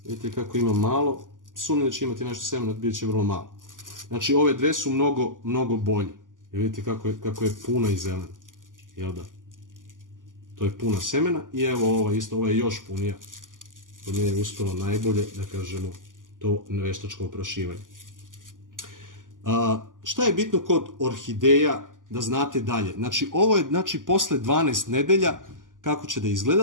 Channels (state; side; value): late; left; 0.88 ms